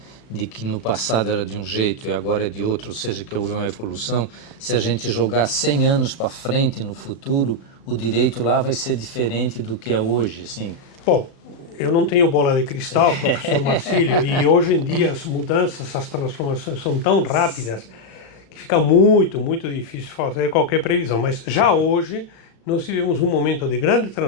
de que no passado era de um jeito e agora é de outro, ou seja, que houve uma evolução, se a gente jogar 100 anos para frente no futuro, o direito lá vai ser diferente do que é hoje, assim. Bom, eu não tenho bola de cristal, professor Marcílio, e hoje em dia as mudanças, as transformações são tão rápidas que fica muito difícil fazer qualquer previsão. Mas já hoje nós vivemos um momento de grande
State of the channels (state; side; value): late; right; 36 ms